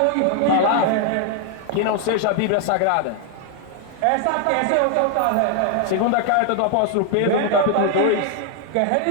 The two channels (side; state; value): both; different; correlation 0.00